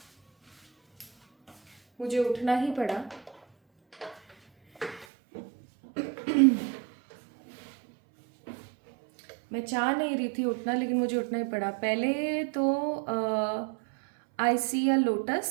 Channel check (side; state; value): left; drops out; at 5.1 s